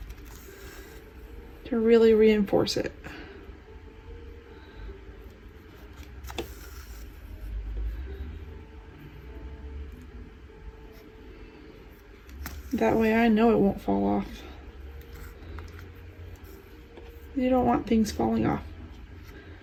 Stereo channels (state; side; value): identical; both; correlation 1.00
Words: to really reinforce it. That way I know it won't fall off. You don't want things falling off.